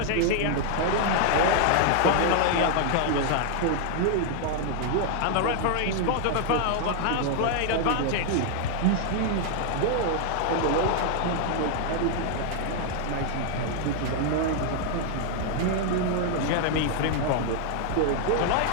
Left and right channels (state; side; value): different; both; correlation 0.00